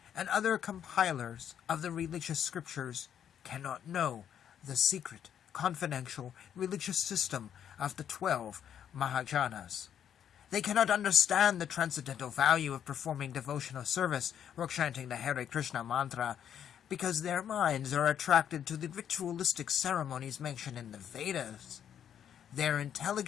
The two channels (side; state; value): right; quieter; 9.2 dB